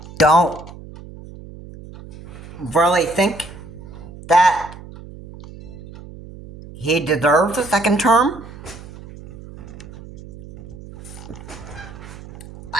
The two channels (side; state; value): right; noise; hum, 16 dB below the sound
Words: don't really think that he deserves a second term.